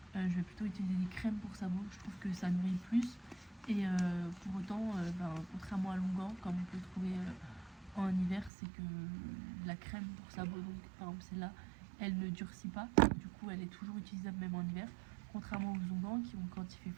Je vais plutôt utiliser des crèmes pour sabots, je trouve que ça nourrit plus et pour autant contrairement à l'onguent comme on peut trouver en hiver, c'est que la crème pour sabots, donc par exemple celle-là, elle ne durcit pas, du coup elle est toujours utilisable même en hiver, contrairement aux onguents qui ont, quand il fait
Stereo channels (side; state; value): left; drops out; at 8.5 s